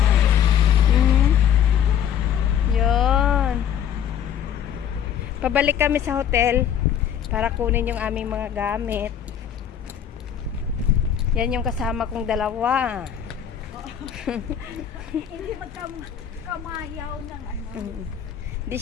Yun. Pabalik kami sa hotel para kunin yung aming mga gamit. Yan yung kasama kong dalawa. Hindi magkamayaw ng Hindi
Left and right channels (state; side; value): quieter; right; 9.2 dB